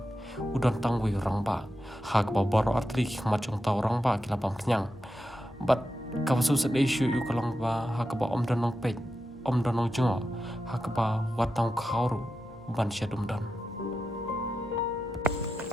udon tangwi orang ba hak ba boro artri macong tau orang ba kilapam kenyang but kawasu set issue yu kalong ba hak ba om donong pe om donong jongo hak ba watang khauru ban syadum dan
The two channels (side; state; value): left; noise; hum, 27 dB below the sound